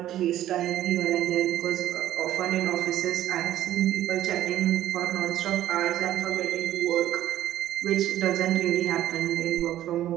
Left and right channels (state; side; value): quieter; left; 12.9 dB